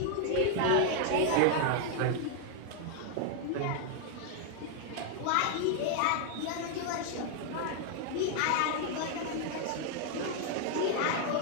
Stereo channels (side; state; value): both; different; correlation 0.00